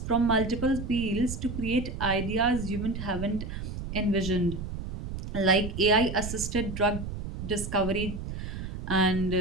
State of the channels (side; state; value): right; noise; rumble, 7 dB below the sound